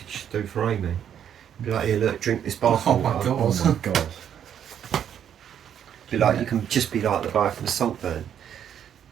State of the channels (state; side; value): quieter; left; 9.2 dB